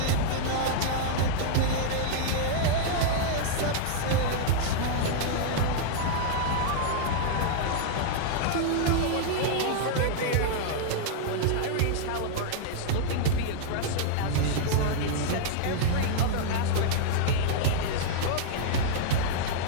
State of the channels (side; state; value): both; different; correlation -0.02